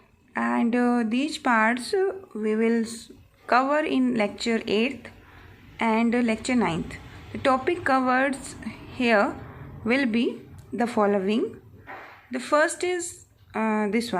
And these parts we will cover in lecture 8th and lecture 9th. The topic covered here will be the following. The first is this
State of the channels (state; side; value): identical; both; correlation 1.00